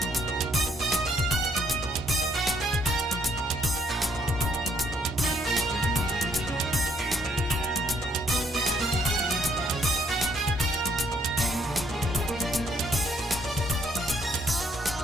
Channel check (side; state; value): both; normal; correlation 0.68